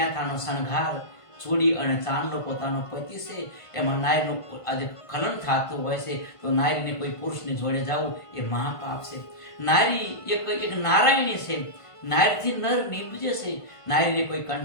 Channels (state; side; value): late; right; 1.5 ms